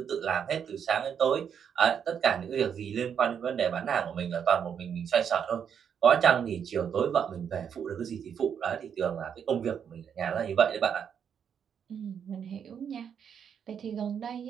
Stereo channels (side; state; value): left; quieter; 7.8 dB